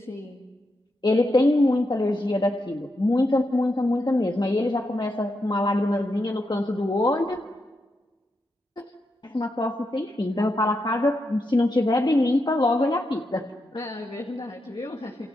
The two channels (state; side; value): normal; both; correlation 0.84